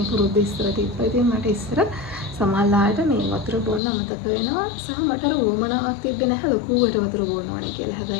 පුරුද්ද ඉස්සර තිබ්බා. ඉතින් මට ඉස්සර සමහරවිට මේ වතුර බොන්න අමතක වෙනවා. සහ මට අර උවමනාවක් තිබ්බේ නැහැ ලොකුවට වතුර බොන්න ඕනේ කියලා.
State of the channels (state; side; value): drops out; right; at 3.8 s